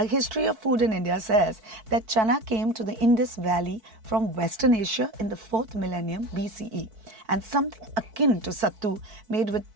History of Food in India says that chana came to the Indus Valley from Western Asia in the 4th millennium BCE, and something akin to sattu made with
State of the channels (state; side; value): late; left; 4.6 ms